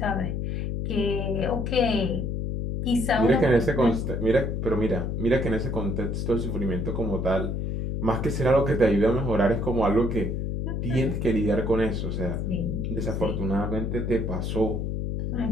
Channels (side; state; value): left; noise; hum, 2 dB below the sound